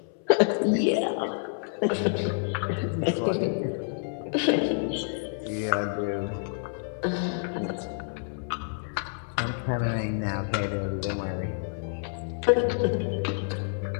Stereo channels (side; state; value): right; silent; 59 dB below the other